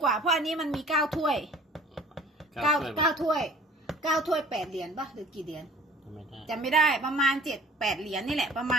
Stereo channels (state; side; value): normal; both; correlation 0.50